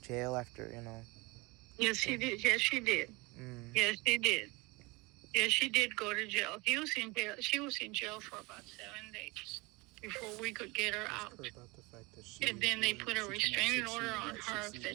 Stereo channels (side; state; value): left; quieter; 24.9 dB